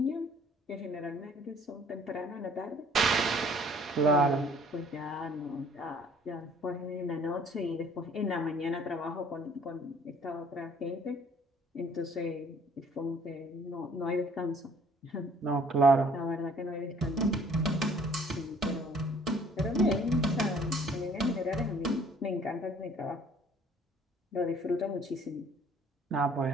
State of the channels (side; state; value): both; normal; correlation 0.57